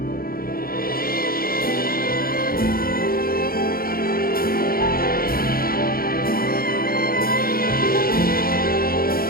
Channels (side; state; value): right; late; 0.43 ms